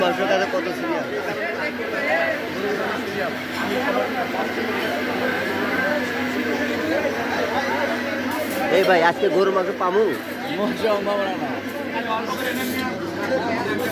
মাংসটা কত সিরিয়াল। এই ভাই আজকে গরুর মাংস পামু?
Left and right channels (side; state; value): both; identical; correlation 1.00